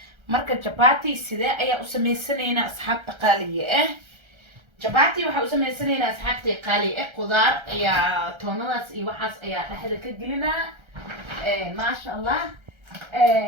marka chapati sidee ayaa u sameysanaynaa asxaabta qaaliga chapati waxa u sameysanaynaa asxaabtay qaali qudaar ayaa toonadaas iyo waxaas ayaa dhaxda ka gelinaa. ma sha Allah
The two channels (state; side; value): late; left; 1.3 ms